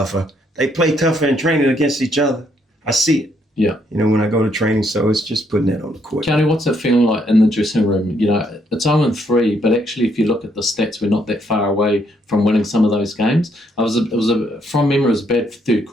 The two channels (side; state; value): both; normal; correlation 0.72